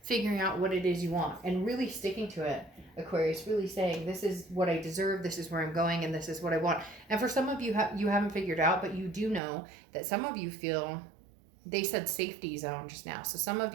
figuring out what it is you want and really sticking to it. Aquarius, really saying, this is what I deserve, this is where I'm going, and this is what I want. And for some of you, you haven't figured out, but you do know that some of you feel, they said safety zone just now. So some of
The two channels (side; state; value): left; drops out; at 9.4 s